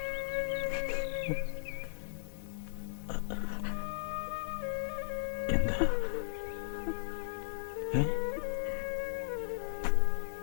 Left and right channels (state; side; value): silent; right; 54 dB below the other